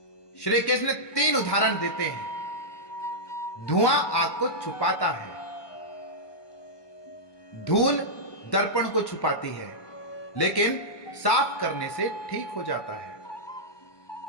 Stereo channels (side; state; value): right; late; 1.1 ms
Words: श्री कृष्ण 3 उदाहरण देते हैं। धुआं आग को छुपाता है, धूल दर्पण को छुपाती है, लेकिन साफ करने से ठीक हो जाता है।